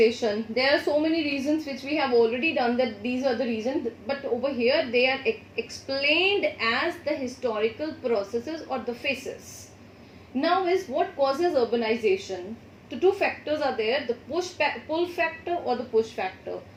There are so many reasons which we have already done that these are the reasons, but over here they are explained as the historical processes or the phases. Now is what causes urbanization. The two factors are there, the pull factor or the push factor.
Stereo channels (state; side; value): identical; both; correlation 1.00